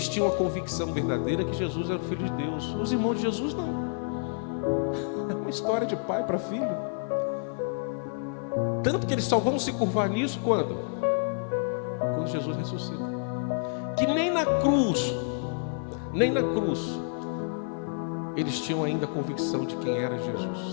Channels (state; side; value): silent; right; digital silence